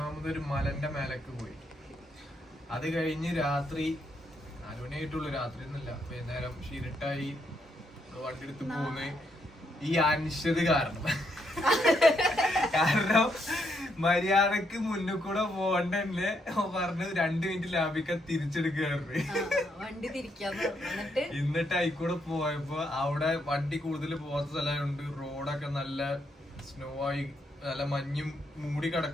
മലന്റെ മേലേക്ക് പോയി. അത് കഴിഞ്ഞ് രാത്രി 4 മണിയായിട്ടുള്ളൂ. രാത്രി ഒന്നുമില്ല, വൈകുന്നേരം ഷിരിട്ടായി വണ്ടി എടുത്ത് പോകുന്ന ഈ അനിശ്ചിത കാരണം മര്യാദക്ക് മുന്നിൽ കൂടെ പോകണ്ടല്ലേ പറഞ്ഞ് 2 മിനിറ്റ് ലാഭിക്കാൻ തിരിച്ചെടുക്കുകയായിരുന്നു. എന്നിട്ട് ആയിക്കൂടെ പോയപ്പോ അവിടെ വണ്ടി കൂടുതൽ പോകാത്ത സ്ഥലമുണ്ട്. റോഡൊക്കെ നല്ല സ്നോ ആയി, നല്ല മഞ്ഞും മൂടി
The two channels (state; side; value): normal; both; correlation 0.76